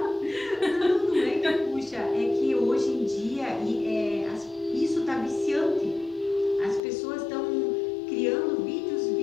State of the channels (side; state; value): right; drops out; at 6.8 s